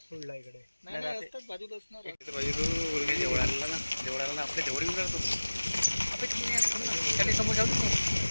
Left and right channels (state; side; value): inverted; both; correlation -1.00